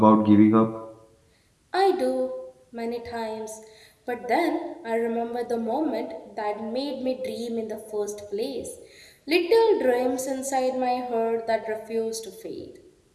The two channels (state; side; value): identical; both; correlation 1.00